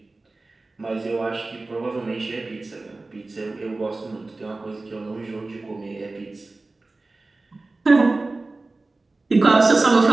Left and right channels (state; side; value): quieter; left; 3.3 dB